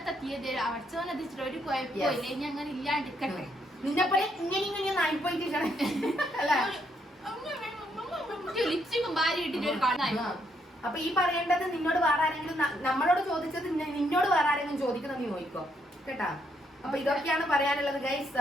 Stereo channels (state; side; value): normal; both; correlation 0.74